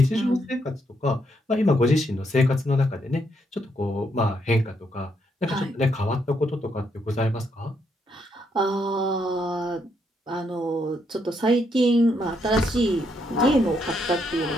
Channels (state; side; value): normal; both; correlation 0.76